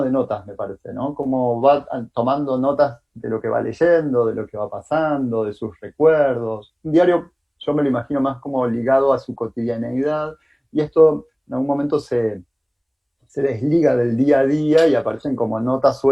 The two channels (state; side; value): identical; both; correlation 1.00